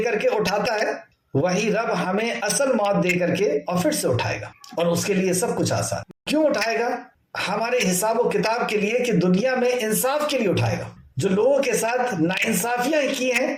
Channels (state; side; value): identical; both; correlation 1.00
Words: کر کے اٹھاتا ہے وہی رب ہمیں اصل موت دے کر کے اور پھر سے اٹھائے گا، اور اس کے لیے سب کچھ آسان۔ کیوں اٹھائے گا؟ ہمارے حساب و کتاب کے لیے، کہ دنیا میں انصاف کے لیے اٹھائے گا۔ جو لوگوں کے ساتھ ناانصافیاں کی ہیں،